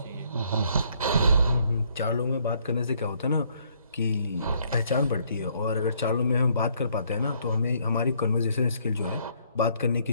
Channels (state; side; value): inverted; both; correlation -0.67